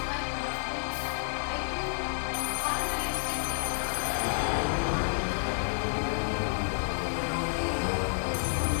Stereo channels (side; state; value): right; silent; digital silence